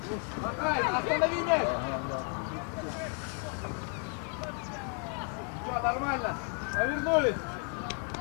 Макай, останови мяч. Что, нормально? Повернулись.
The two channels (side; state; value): right; quieter; 38.6 dB